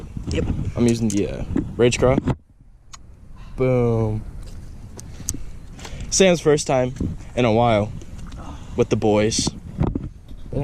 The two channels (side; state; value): both; identical; correlation 1.00